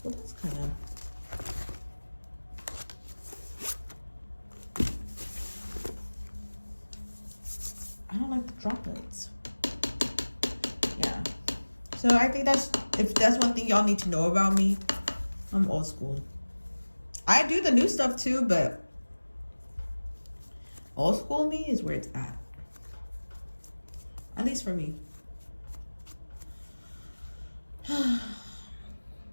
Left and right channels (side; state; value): both; inverted; correlation -1.00